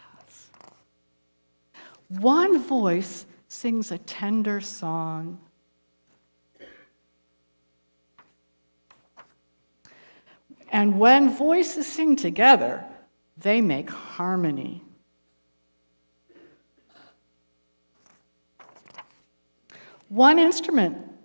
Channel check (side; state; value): both; inverted; correlation -1.00